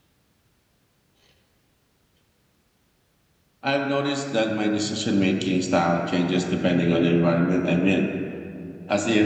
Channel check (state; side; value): identical; both; correlation 1.00